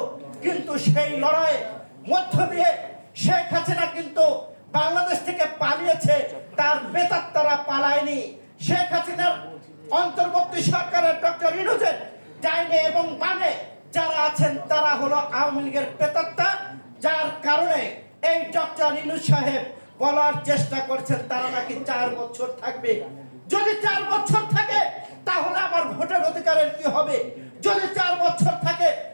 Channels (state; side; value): inverted; both; correlation -1.00